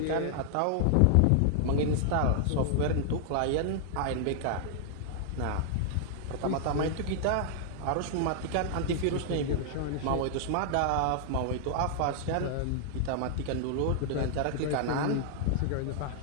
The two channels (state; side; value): different; both; correlation 0.00